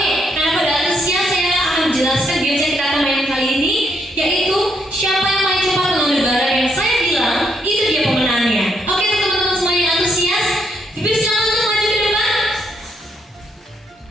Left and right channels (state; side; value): normal; both; correlation 0.75